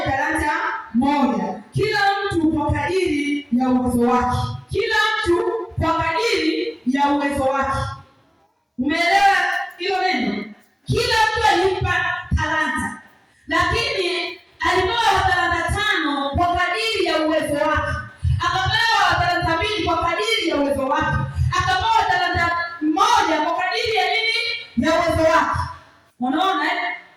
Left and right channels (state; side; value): identical; both; correlation 1.00